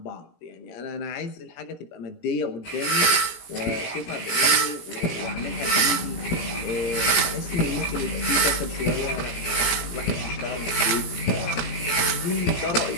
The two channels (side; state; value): right; late; 17 ms